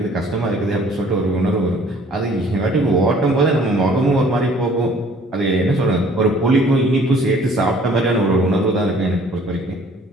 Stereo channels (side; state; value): both; normal; correlation 0.55